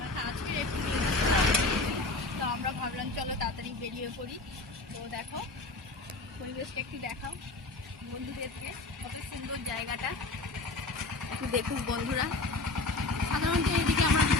আজকে একটু তো আমরা ভাবলাম চলো তাড়াতাড়ি বেরিয়ে পড়ি। তো দেখো পরিবেশটা একটু দেখাও বন্ধুদেরকে, কত সুন্দর জায়গাটা একটু দেখুক বন্ধুরা। সাধারণত এদিকে আমরা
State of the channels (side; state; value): right; quieter; 3.2 dB